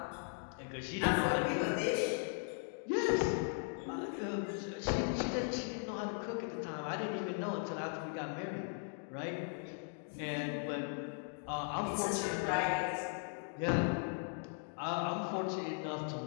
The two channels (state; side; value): silent; right; 52 dB below the other